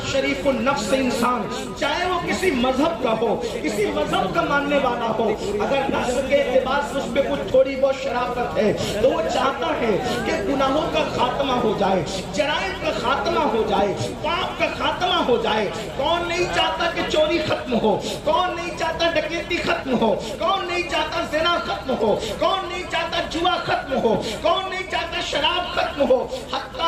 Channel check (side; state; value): both; identical; correlation 1.00